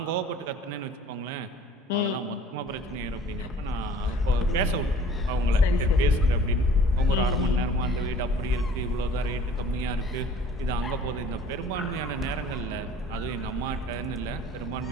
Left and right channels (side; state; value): both; normal; correlation 0.50